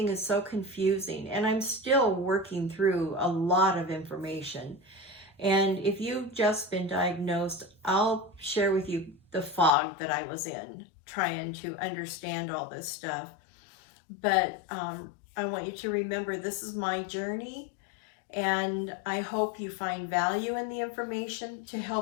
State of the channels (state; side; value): drops out; right; at 9.7 s